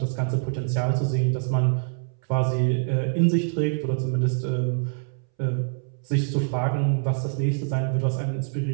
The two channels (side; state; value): left; silent; 62 dB below the other